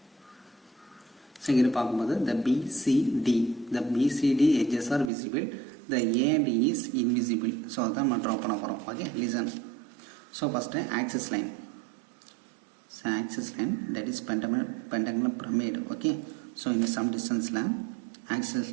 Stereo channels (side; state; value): left; drops out; at 5.1 s